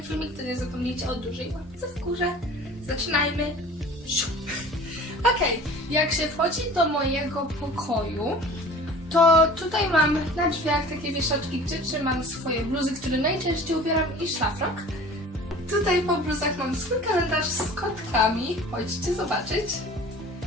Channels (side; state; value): both; normal; correlation 0.43